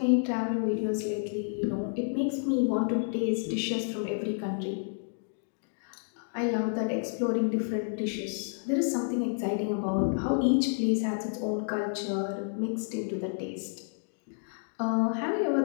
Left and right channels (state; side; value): silent; right; digital silence